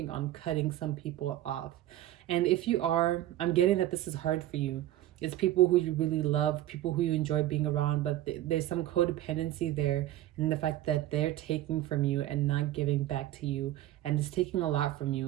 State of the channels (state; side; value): quieter; left; 14.1 dB